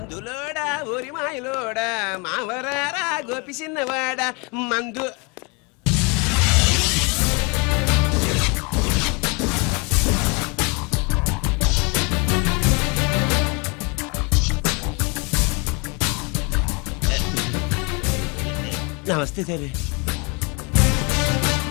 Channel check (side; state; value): right; quieter; 30.5 dB